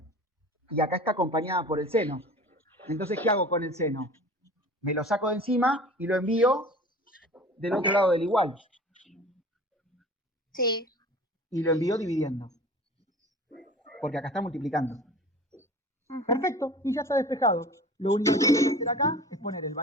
Y acá está acompañada por el seno. Entonces, ¿qué hago con el seno? Me lo saco de encima y lo envío del otro lado del igual. Sí. Y lo envío dividiendo. Porque acá está multiplicando. Perfecto, y ya está despejado. Lo único que tengo que hacer acá es poner el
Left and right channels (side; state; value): both; normal; correlation 0.41